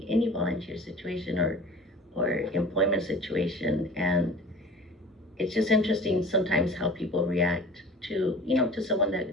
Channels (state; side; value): normal; both; correlation 0.42